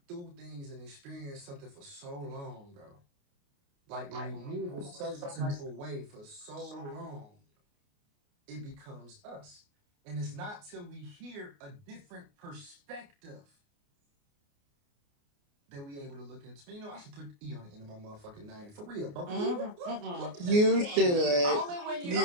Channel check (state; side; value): late; left; 29 ms